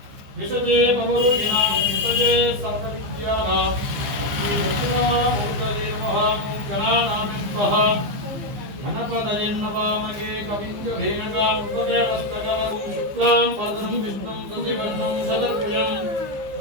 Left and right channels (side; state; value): left; late; 15 ms